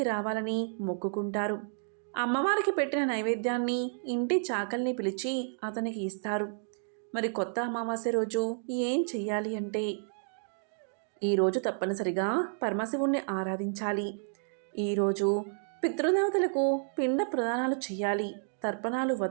రావాలని మొక్కుకుంటారు. అమ్మవారికి పెట్టిన నైవేద్యాన్ని ఇంటి చాకల్ని పిలిచి అతనికి ఇస్తారు. మరి కొత్త అమావాస్య రోజు ఏం చెయ్యాలి అంటే, ఈరోజు తప్పనిసరిగా పరమశివుణ్ణి ఆరాధించాలి. ఈరోజు పితృదేవతలకు పిండ ప్రదానాలు చేయాలి, తర్పణాలు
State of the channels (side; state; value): left; silent; 57 dB below the other